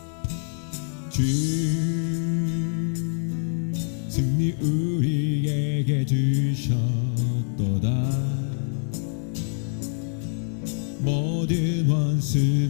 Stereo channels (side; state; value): right; silent; 62 dB below the other